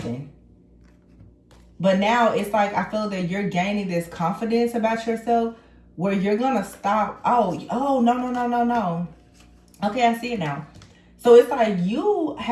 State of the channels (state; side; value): identical; both; correlation 1.00